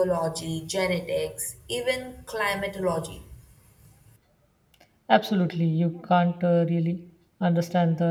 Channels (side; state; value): both; identical; correlation 1.00